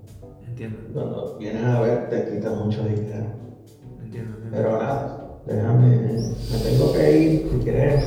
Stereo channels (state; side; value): identical; both; correlation 1.00